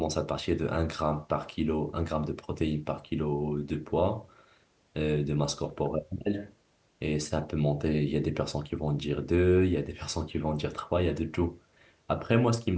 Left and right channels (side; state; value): both; identical; correlation 1.00